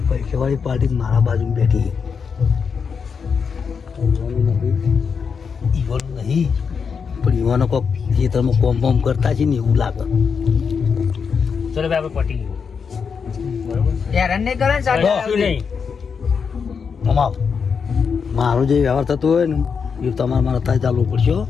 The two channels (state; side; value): quieter; right; 6.0 dB